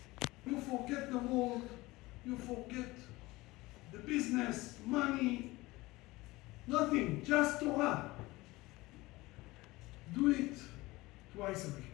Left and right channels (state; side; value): quieter; right; 20.5 dB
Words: You forget the world, you forget the business, money, nothing, just Torah. Do it twice a